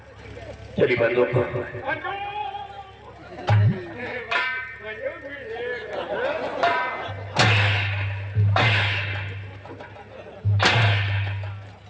तेरी बंदूक को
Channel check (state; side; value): identical; both; correlation 1.00